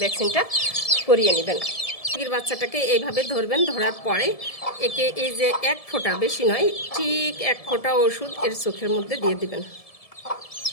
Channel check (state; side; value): late; right; 1.7 ms